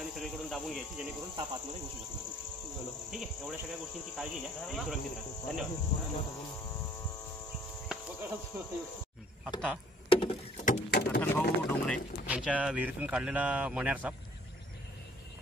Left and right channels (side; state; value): both; normal; correlation 0.57